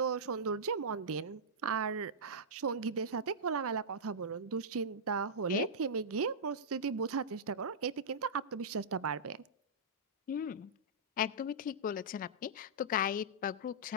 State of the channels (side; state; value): both; normal; correlation -0.14